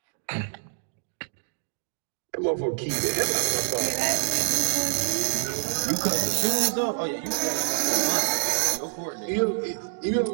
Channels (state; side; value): silent; left; digital silence